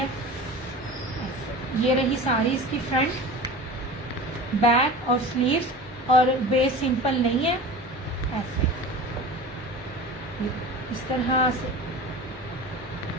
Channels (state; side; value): normal; both; correlation 0.35